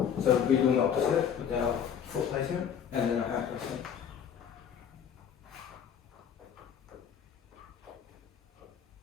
So we're doing the opposite with our foot placement and then our hand placement.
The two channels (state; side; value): quieter; right; 8.2 dB